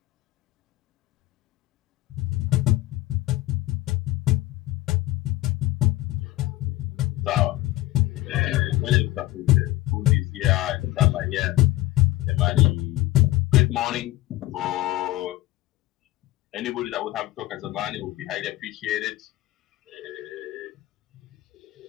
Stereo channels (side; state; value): right; quieter; 16.9 dB